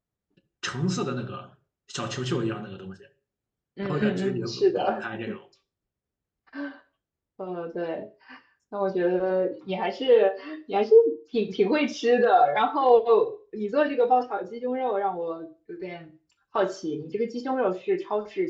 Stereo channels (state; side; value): identical; both; correlation 1.00